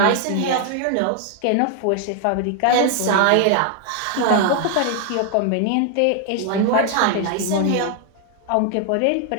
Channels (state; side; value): different; both; correlation 0.00